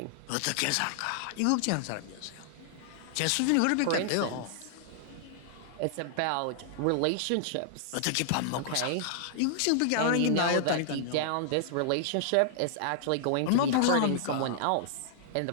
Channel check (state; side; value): different; both; correlation -0.01